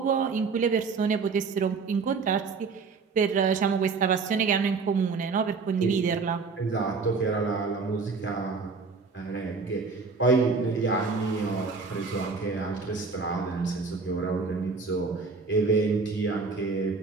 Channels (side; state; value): left; quieter; 4.7 dB